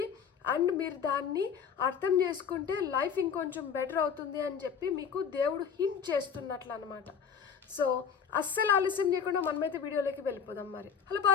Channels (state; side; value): quieter; right; 6.9 dB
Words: అండ్ మీరు దాన్ని అర్థం చేసుకుంటే లైఫ్ ఇంకొంచెం బెటర్ అవుతుంది అని చెప్పి మీకు దేవుడు హింట్ చేస్తున్నట్లు అనమాట. సో అస్సలు ఆలస్యం చేయకుండా మనమైతే వీడియోలోకి వెళ్ళిపోదాం. మరి హలో